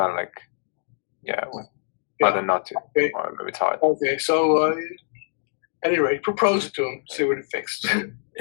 of like, rather not to, okay. Or maybe it's hard. Okay, so anyway, propose it to him, see what he thinks.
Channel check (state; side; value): silent; right; digital silence